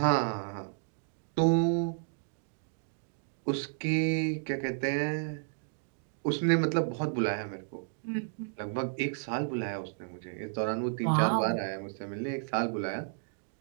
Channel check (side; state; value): left; silent; digital silence